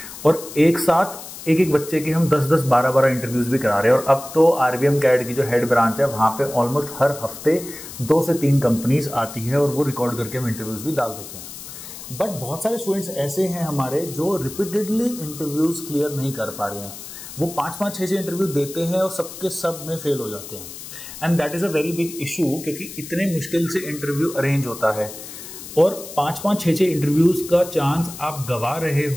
और एक साथ एक एक बच्चे के हम 10-10, 12-12 इंटरव्यूज भी करा रहे हैं। और अब तो RVM CAD की जो हेड ब्रांच है वहां पे ऑलमोस्ट हर हफ्ते 2 से 3 कंपनीज आती है और वो रिकॉर्ड करके हम इंटरव्यूज भी डाल देते हैं। बट बहुत सारे स्टूडेंट्स ऐसे हैं हमारे जो रिपीटेडली इंटरव्यूज क्लियर नहीं कर पा रहे हैं। वो 5-5, 6-6 इंटरव्यू देते हैं और सबके सब में फेल हो जाते हैं। And that is a very big issue, क्योंकि इतने मुश्किल से इंटरव्यू अरेंज होता है और 5-5, 6-6 इंटरव्यूज का चांस आप गवा रहे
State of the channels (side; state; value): left; noise; hiss, 13 dB below the sound